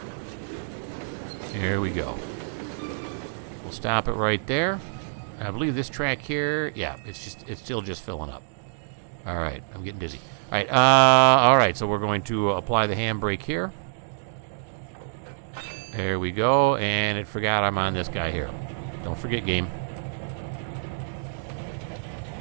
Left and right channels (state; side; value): silent; left; digital silence